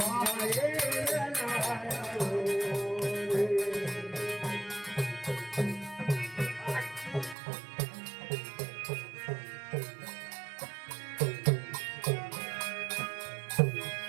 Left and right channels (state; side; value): drops out; left; at 7.4 s